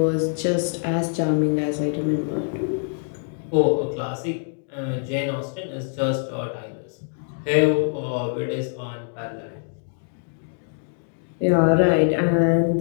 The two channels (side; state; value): right; silent; digital silence